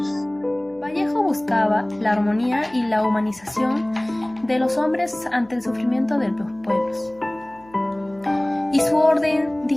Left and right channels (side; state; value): left; noise; hum, 27 dB below the sound